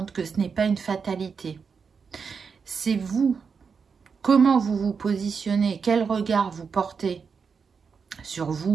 que ce n'est pas une fatalité. C'est vous, comment vous vous positionnez, quel regard vous portez sur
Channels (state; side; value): quieter; left; 5.7 dB